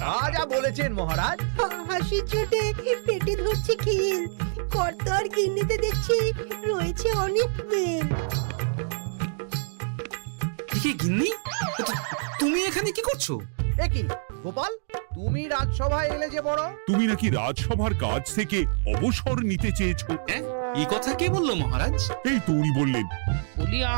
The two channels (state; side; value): silent; left; digital silence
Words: যা বলেছেন মহারাজ। হাসির চোটে পেটে ধরছে খিল। কর্তা আর গিন্নিতে দেখছি রয়েছে অনেক মেল। কি গিন্নি, তুমি এখানে কি করছো? একই গোপাল, তুমি রাজসভায় এলে যে বড়। তুমি নাকি রাজসভার কাজ থেকে অবসর নিতে চেয়েছো? হ্যাঁ, এই কথা কে বললো মহারাজ? এই তো উনি বললেন। বলি